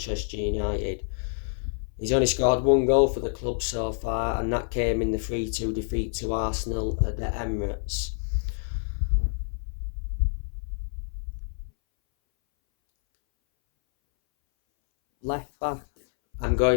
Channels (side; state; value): right; silent; 60 dB below the other